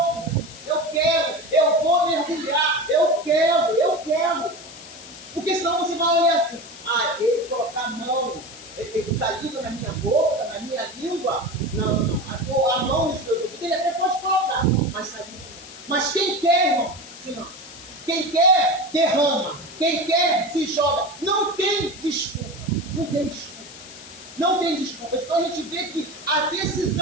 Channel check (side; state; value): left; noise; hiss, 16 dB below the sound